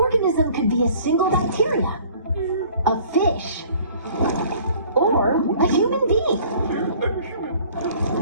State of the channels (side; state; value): both; inverted; correlation -0.52